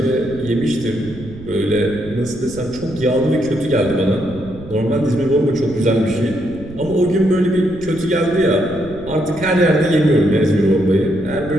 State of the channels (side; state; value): right; noise; rumble, 16 dB below the sound